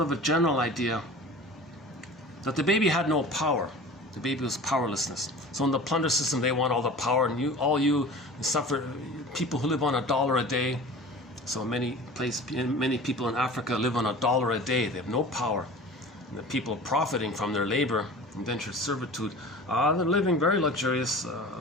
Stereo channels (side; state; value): both; normal; correlation 0.39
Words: a general idea that the baby had no power. The baby was powerlessness. So in the plunder system, they want all the power, and you suffer. People who live on $1 a day. So many people in Africa live on $1 a day. They have no power. And the people profiting from their labor, indentured servitude, they're living very luxurious